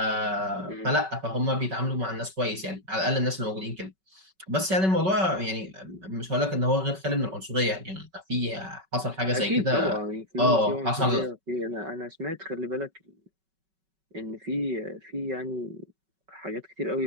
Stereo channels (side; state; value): left; late; 5.3 ms